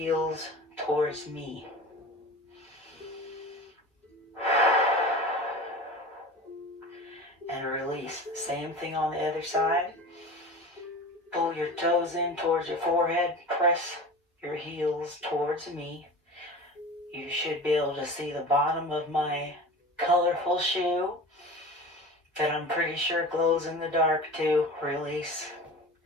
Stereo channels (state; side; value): normal; both; correlation 0.34